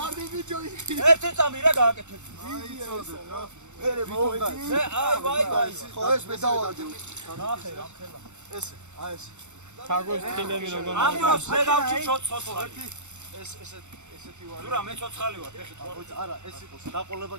ბიჭო ერთი წამი რა გააკეთე. მერე მოვიდა აი ვაი. ხო ეს მე დავარდი ნახე რა ხელა. ეს აი ეს თაგოს თილები როგორ ამ დროს მე გავჭი ცოცხალი. ესეთი ვარ ზურა მე ცოცხალი ვარ. ეხეთ ვარ. არა ეს იყოს დაყოლება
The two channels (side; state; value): left; late; 0.83 ms